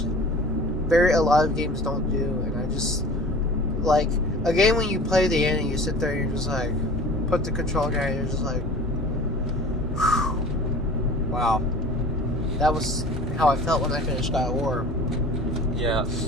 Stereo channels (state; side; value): normal; both; correlation 0.41